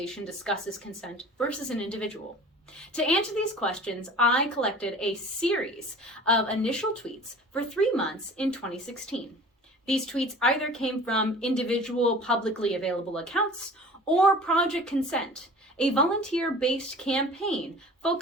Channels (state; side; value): normal; both; correlation 0.43